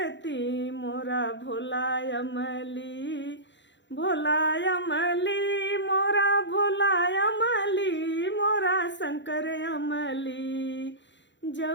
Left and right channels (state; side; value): late; right; 0.53 ms